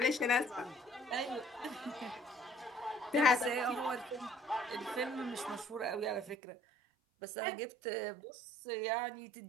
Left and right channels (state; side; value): drops out; left; at 6.4 s